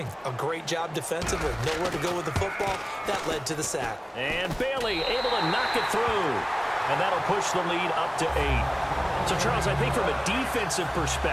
A great job defensively. Nowhere to go with the football. That led to the sack. And Bailey able to knock it through. And that'll push the lead up to 8. So, Charles, I think from a defensive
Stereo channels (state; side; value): identical; both; correlation 1.00